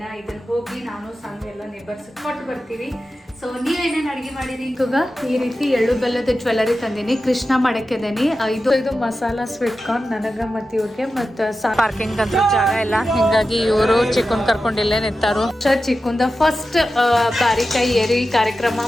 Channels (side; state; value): both; normal; correlation 0.92